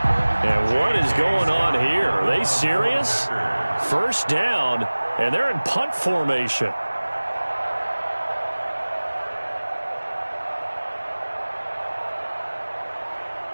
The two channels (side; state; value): both; inverted; correlation -1.00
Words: And what is going on here? Are they serious? 1st down, and they're in punt formation.